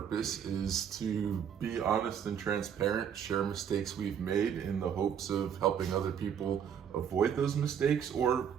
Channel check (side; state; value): left; quieter; 8.3 dB